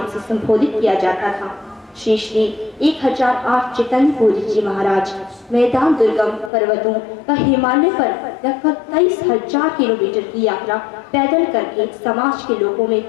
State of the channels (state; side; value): drops out; right; at 6.5 s